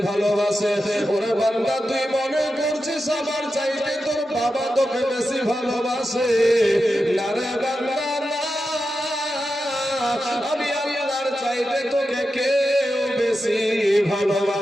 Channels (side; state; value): both; normal; correlation 0.90